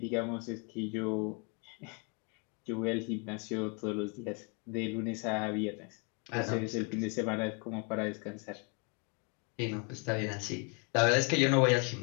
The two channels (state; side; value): quieter; right; 34.0 dB